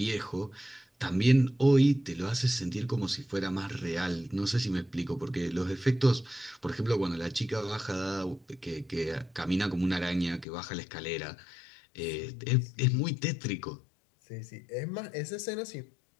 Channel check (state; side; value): drops out; right; at 10.5 s